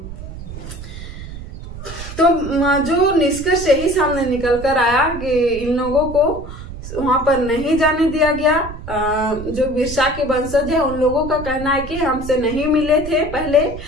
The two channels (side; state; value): right; noise; rumble, 11 dB below the sound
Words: तो जो निष्कर्ष यही सामने निकल कर आया कि इन लोगों को वहां पर नहीं जाने दिया गया। जो बिरसा के वंशज है उन लोगों का कहना है कि हमसे नहीं मिले थे पहले,